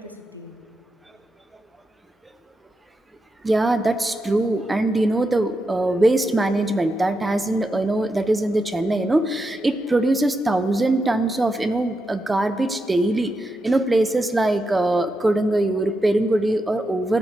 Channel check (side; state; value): both; normal; correlation 0.86